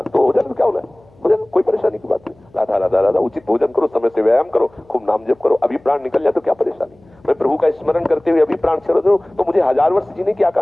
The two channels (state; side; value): noise; left; hum, 30 dB below the sound